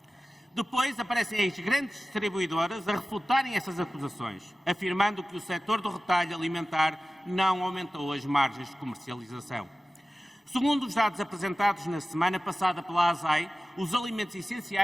Depois aparecem as grandes distribuidoras a refutarem essas acusações, afirmando que o setor do retalho alimentar não aumentou as margens de comercialização. Segundo os dados apresentados na semana passada pela ASAI, os alimentos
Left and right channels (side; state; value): both; normal; correlation 0.96